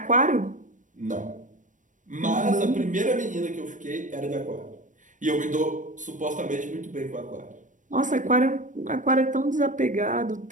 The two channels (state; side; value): late; left; 0.37 ms